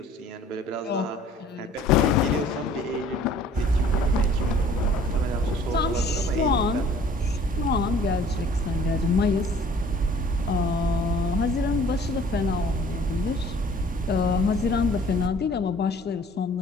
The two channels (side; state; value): both; normal; correlation 0.53